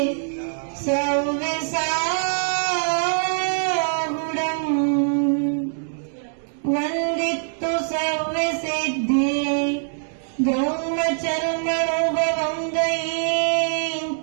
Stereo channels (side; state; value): left; silent; digital silence